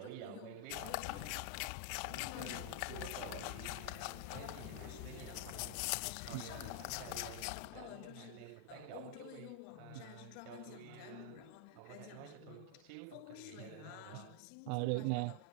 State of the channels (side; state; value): both; different; correlation 0.00